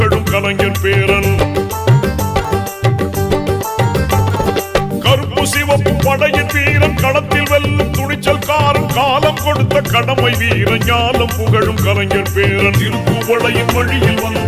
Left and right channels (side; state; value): both; identical; correlation 1.00